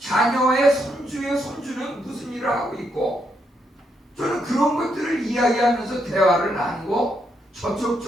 손주의 손주는 무슨 일을 하고 있고, 저는 그런 것들을 이야기하면서 대화를 나누고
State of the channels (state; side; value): normal; both; correlation 0.78